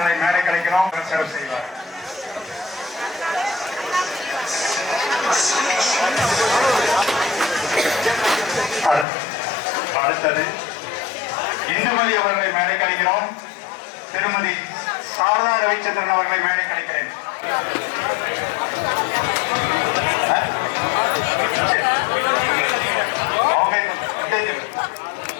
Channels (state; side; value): drops out; right; at 9.1 s